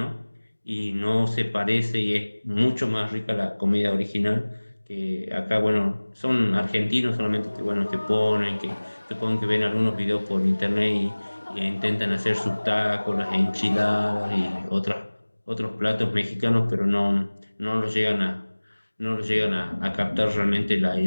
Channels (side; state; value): both; inverted; correlation -1.00